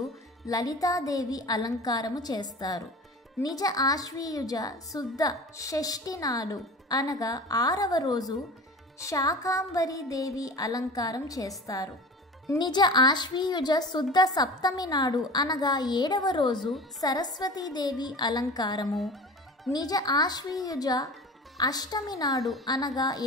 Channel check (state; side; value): normal; both; correlation 0.36